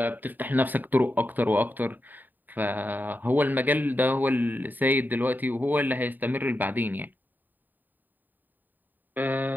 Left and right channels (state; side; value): late; left; 0.088 ms